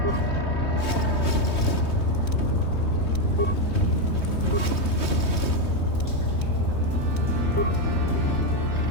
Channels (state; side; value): late; right; 3.2 ms